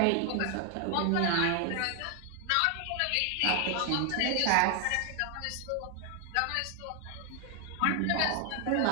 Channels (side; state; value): both; different; correlation 0.01